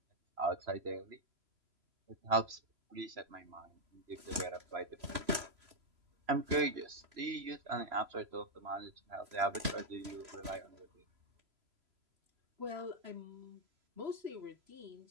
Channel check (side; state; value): left; late; 3.0 ms